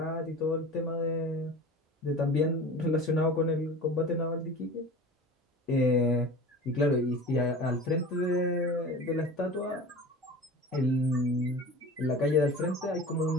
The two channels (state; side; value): normal; both; correlation 0.37